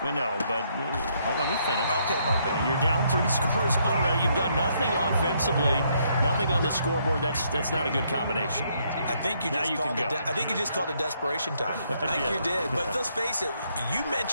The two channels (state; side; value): inverted; both; correlation -0.72